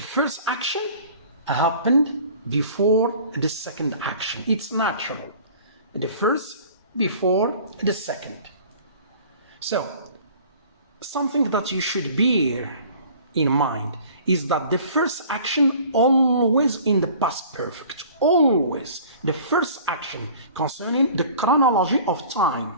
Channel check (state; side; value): inverted; both; correlation -0.48